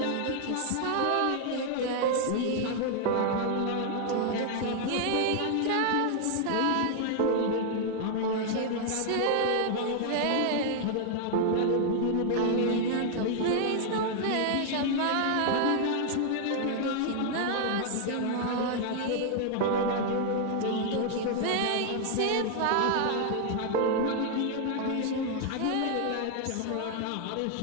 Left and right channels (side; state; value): both; different; correlation 0.00